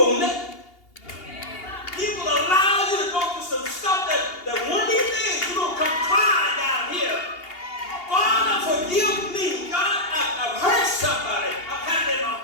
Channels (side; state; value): right; late; 2.8 ms